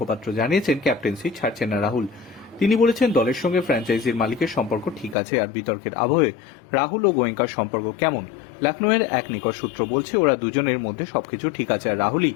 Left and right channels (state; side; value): drops out; right; at 5.2 s